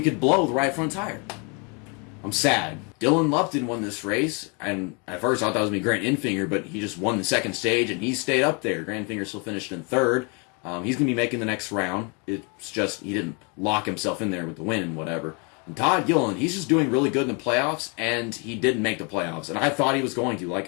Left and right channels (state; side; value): quieter; right; 33.7 dB